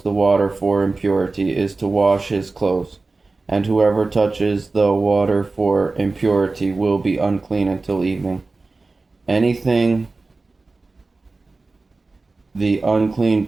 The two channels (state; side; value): quieter; left; 3.6 dB